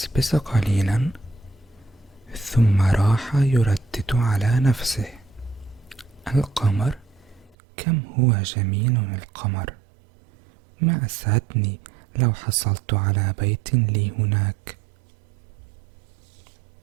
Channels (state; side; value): drops out; left; at 7.6 s